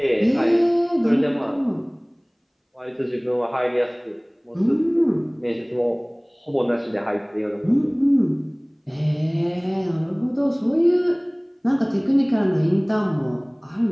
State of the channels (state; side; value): identical; both; correlation 1.00